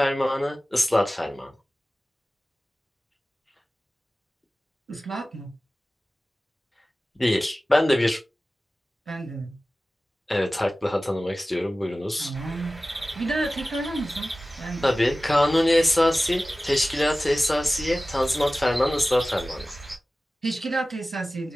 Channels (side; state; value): both; normal; correlation 0.96